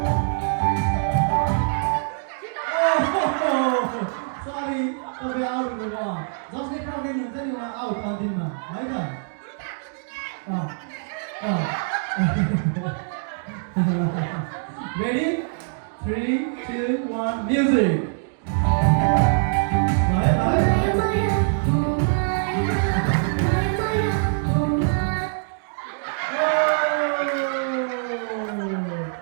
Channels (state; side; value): silent; left; digital silence